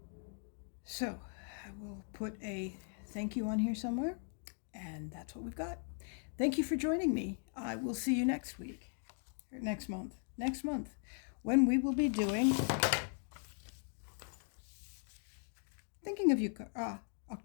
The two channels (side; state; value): right; silent; 52 dB below the other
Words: So, I will put a thank you on here somewhere, and that's what we've got. Thank you for joining me. I will see you next week, or next month, when we will be doing Thinking of You,